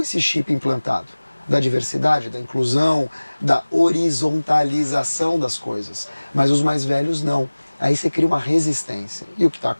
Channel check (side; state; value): both; inverted; correlation -1.00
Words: esse chip implantado da diversidade, da inclusão, da horizontalização das coisas. Mas os mais velhos não. Aí você cria uma resistência. E o que está